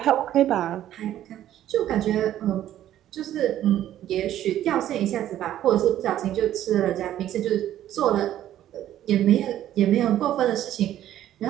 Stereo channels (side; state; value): left; quieter; 12.2 dB